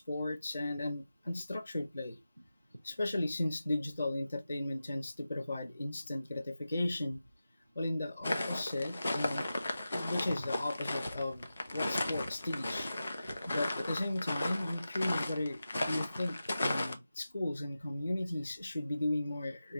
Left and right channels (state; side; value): inverted; both; correlation -0.93